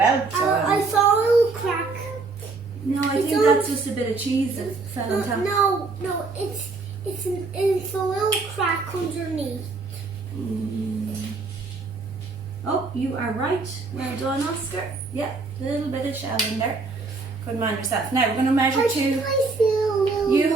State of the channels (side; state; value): left; quieter; 4.0 dB